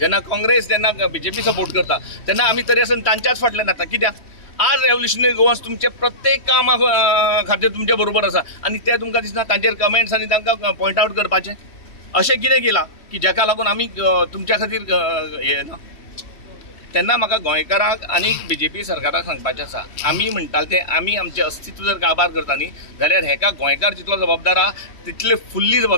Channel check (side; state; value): right; late; 3.1 ms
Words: काँग्रेस जेन्ना BJP सपोर्ट करता तेन्ना आमी तरी आसून तांच्याच फाटल्यान येता. कित्याक? आज रेव्होल्युशनरी गोवन्स तुमचे प्रत्येक कामा खातीर तुमचे बरोबर आसा आनी ते तुमकां दिसना तांचेर कमेंट्स आनी तांकां पॉयंट आवट करपाचें. अशें कितें केलां की जाका लागून आमी तुमच्या खातीर हें ना? तेन्ना म्हाका गोंयकारांक आनी BJP सरकाराक सांगपाचें आसा, आमी म्हणटाले ते आमी आमचें अस्तित्व जर काबार करता न्ही जाल्यार हेका गोंयकार जितलो जबाबदार आहा तितले फुल्ली